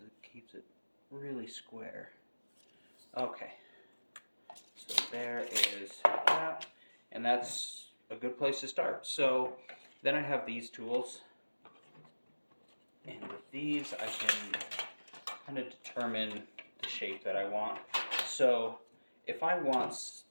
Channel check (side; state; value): both; inverted; correlation -1.00